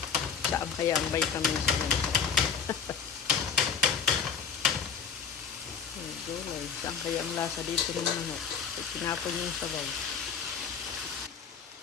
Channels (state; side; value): quieter; right; 6.7 dB